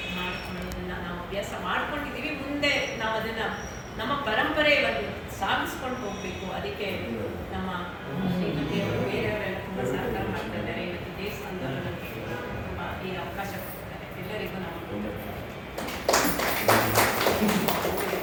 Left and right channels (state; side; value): identical; both; correlation 1.00